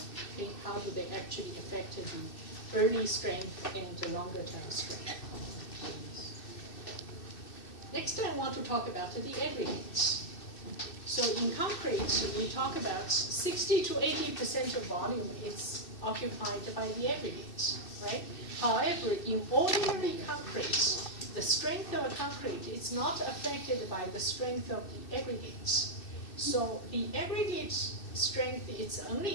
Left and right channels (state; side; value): late; right; 2.6 ms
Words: Okay? How do they actually affect the early strength and the longer term strength? Next, I want to talk about the aggregates. So in concrete, we talk about 60 to 80% of volume is occupied by the aggregates, right? However, in ordinary concrete, the strength of a concrete is not affected by the strength of the aggregates. So the aggregate strength is